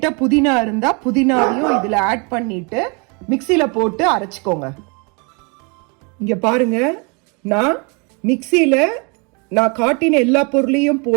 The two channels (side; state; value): left; quieter; 32.6 dB